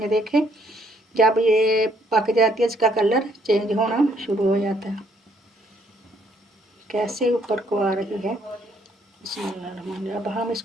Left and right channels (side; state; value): both; normal; correlation 0.68